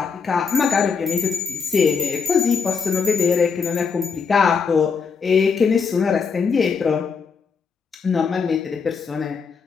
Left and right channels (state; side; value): quieter; right; 5.7 dB